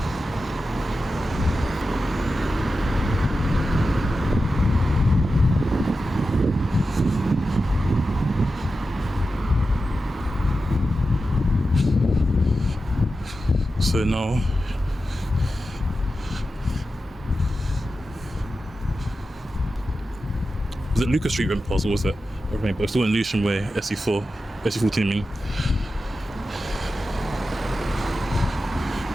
So now was it Lucas Street went past, or was it? But it's still in Luton Way, SE4, SE14 I mean.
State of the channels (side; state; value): both; normal; correlation 0.92